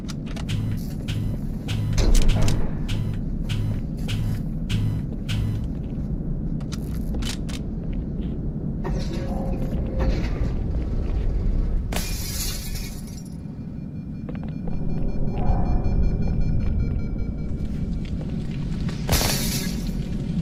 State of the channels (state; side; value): identical; both; correlation 1.00